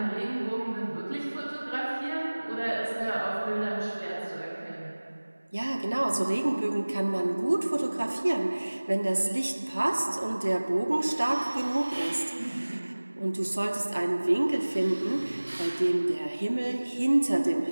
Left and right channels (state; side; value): inverted; both; correlation -1.00